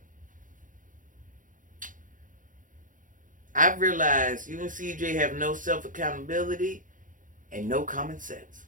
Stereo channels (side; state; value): left; late; 0.38 ms